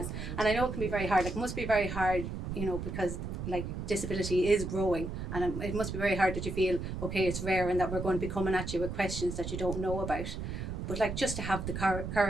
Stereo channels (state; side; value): noise; right; rumble, 5 dB below the sound